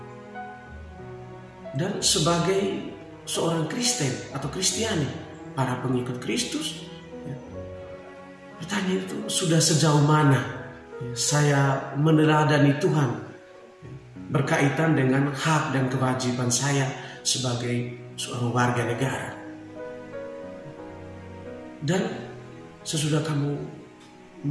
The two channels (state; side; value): identical; both; correlation 1.00